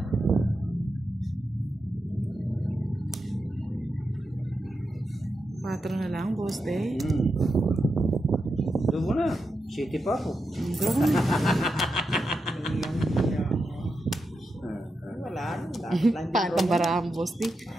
Patro na lang, boss day. Doon mo na. City pa ako. Wala. Dapat lang din. Paano barahan, boss day?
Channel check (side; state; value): both; normal; correlation 0.87